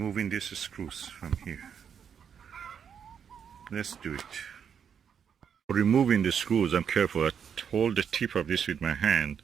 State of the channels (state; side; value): quieter; left; 7.6 dB